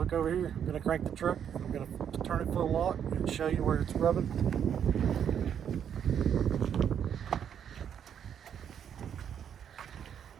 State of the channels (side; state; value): left; quieter; 8.6 dB